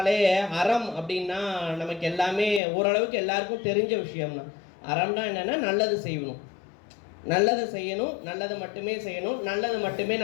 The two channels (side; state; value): right; drops out; at 2.6 s